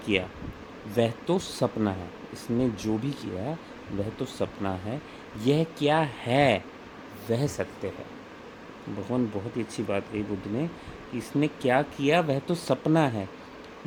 वह तो सपना है, इसने जो भी किया वह तो सपना है, यह क्या है वह सत्य है। भगवान बहुत ही अच्छी बात कही बुद्ध ने कि इसने क्या किया वह तो सपना है,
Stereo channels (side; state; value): both; identical; correlation 1.00